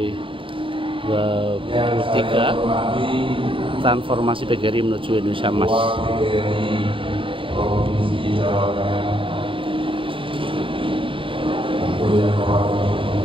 23 transformasi PGRI menuju Indonesia Emas.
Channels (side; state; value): left; late; 0.25 ms